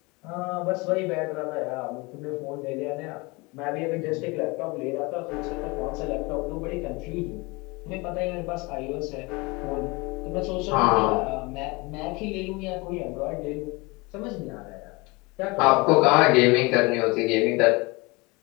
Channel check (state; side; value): quieter; right; 25.6 dB